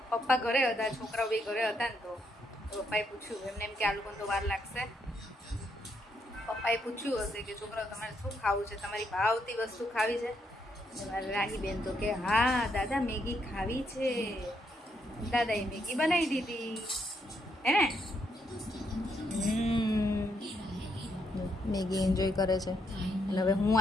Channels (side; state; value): both; normal; correlation 0.76